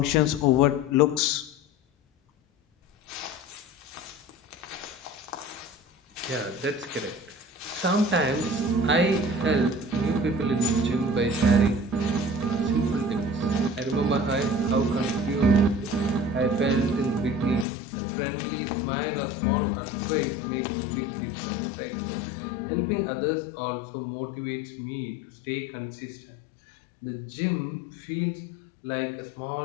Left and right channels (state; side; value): drops out; right; at 17.7 s